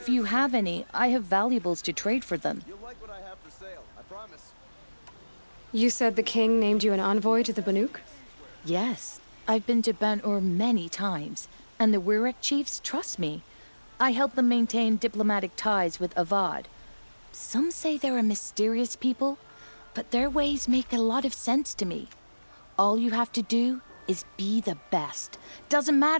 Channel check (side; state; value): both; inverted; correlation -1.00